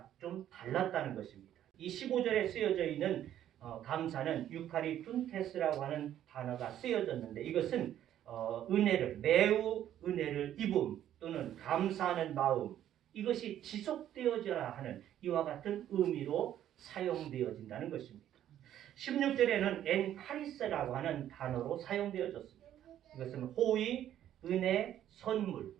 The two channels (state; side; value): quieter; left; 11.4 dB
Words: 좀 달랐다는 것입니다. 이 15절에 쓰여져 있는 감사는 유카리툰테스라고 하는 단어가 쓰여졌는데 이것은 매우 은혜를 입음 또는 감사하는 마음 이것이 지속되어져야 하는 이와 같은 의미로 사용되어진다는 것입니다. 16절에는 엔카리스라고 하는 단어로 사용되어졌습니다. 이것은 호의, 은혜, 선물